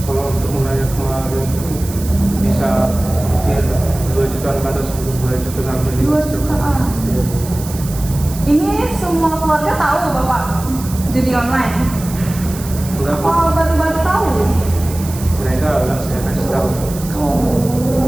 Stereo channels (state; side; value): noise; right; hiss, 13 dB below the sound